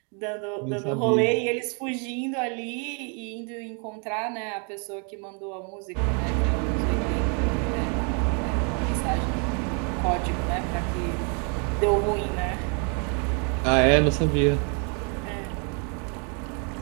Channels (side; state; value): left; quieter; 37.4 dB